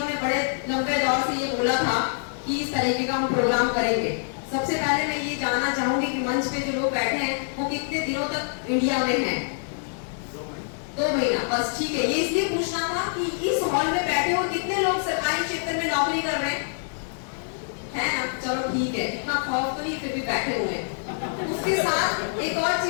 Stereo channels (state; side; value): silent; right; digital silence